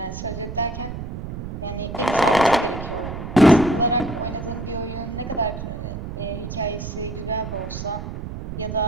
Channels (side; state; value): right; noise; rumble, 7 dB below the sound